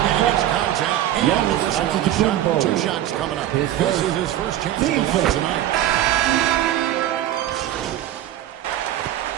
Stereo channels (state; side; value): quieter; left; 12.6 dB